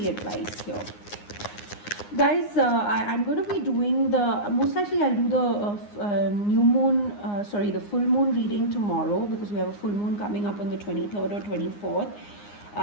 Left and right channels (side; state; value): right; late; 9.7 ms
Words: advice here? Guys, I'm going to be doing most likely I'll do the new moon, the full moon reading tomorrow, because we have a full moon coming up on the 23rd or 24th.